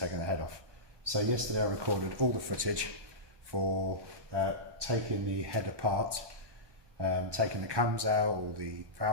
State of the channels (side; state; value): left; late; 1.1 ms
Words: the head off. So yesterday I recorded all the footage for taking the head apart, taking the cams out, all the